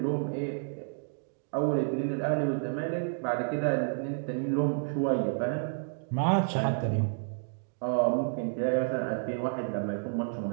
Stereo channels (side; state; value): left; silent; digital silence